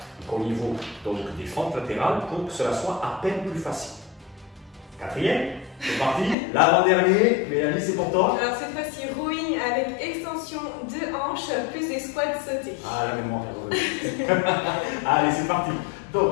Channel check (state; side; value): drops out; right; at 6.4 s